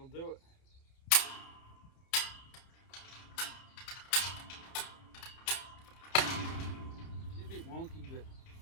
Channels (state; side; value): late; right; 30 ms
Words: do it. She's a bit wonky, but